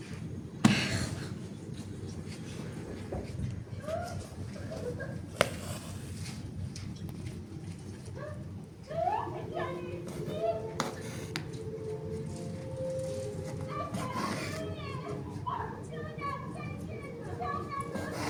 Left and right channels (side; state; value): both; identical; correlation 1.00